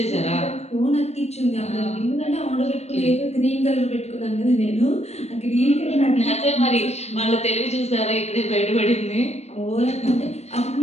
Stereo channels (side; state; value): right; late; 0.31 ms